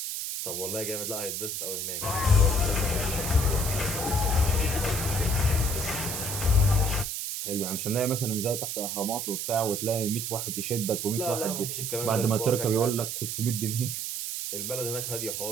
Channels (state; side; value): noise; right; hiss, 3 dB below the sound